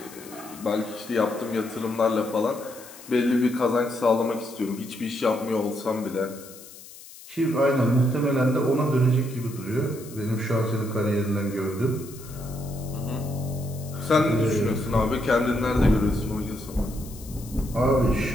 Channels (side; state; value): left; noise; hiss, 18 dB below the sound